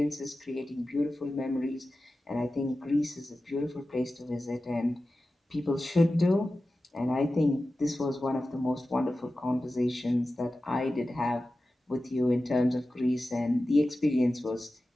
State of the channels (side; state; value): both; normal; correlation 0.94